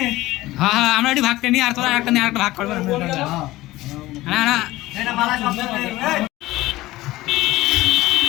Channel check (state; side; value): quieter; right; 17.7 dB